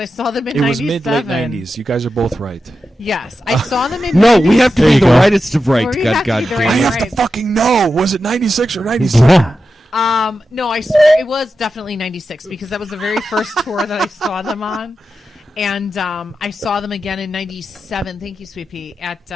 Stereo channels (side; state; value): both; normal; correlation 0.90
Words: saw them in it was 97. mid-late 90s. You guys are both right. Yes, I saw them in. No, 90s. we have to There be you the go. rightest of right. We God, have to God be the damn I right- it. have to fucking know. Was it 96 or 97? Yeah. No, I swear it was definitely 96 because that was the very first tour that I saw them on. And I saw them again in 97. Thank you, Sweet Pea, at